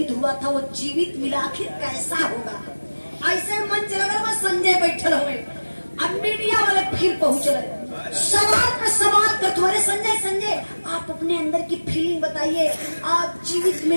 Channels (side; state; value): both; inverted; correlation -1.00